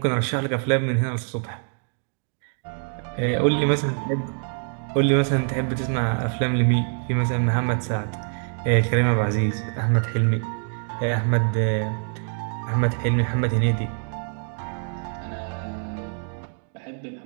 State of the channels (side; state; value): left; silent; 62 dB below the other